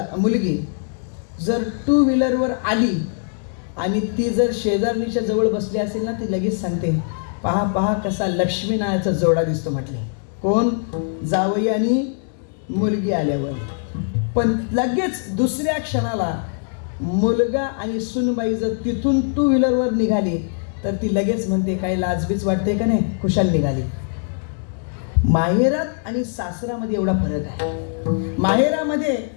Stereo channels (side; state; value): right; silent; digital silence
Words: मुलगी जर टू व्हीलरवर आली आणि ती जर शेजारणीच्या जवळ बसली असेल ना, ती लगेच सांगते, पहा पहा कसा लक्ष्मी नावाचा जोडा दिसतो म्हटले. कोण? जावई आणि मुलगी आल्यावर. पण लगेच दुसऱ्या क्षणाला मुलगा आणि सुनबाई जर तिथून टू व्हीलरवर निघाली तर ती लगेच म्हणते, काही लाजबीज वाटते का नाही, खुशाल निघाली. माहेरात आणि सासरामध्ये एवढा फरक आहे. माहेरामध्ये